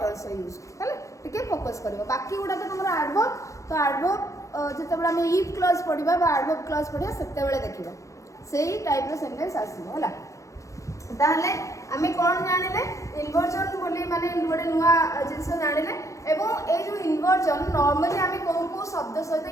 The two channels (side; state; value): right; late; 0.15 ms